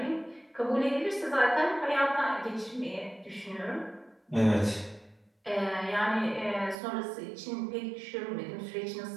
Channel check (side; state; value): left; drops out; at 6.8 s